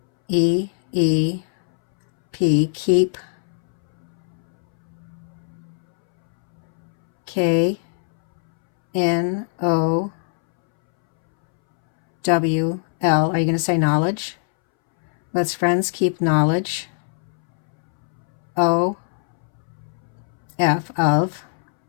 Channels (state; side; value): silent; right; 65 dB below the other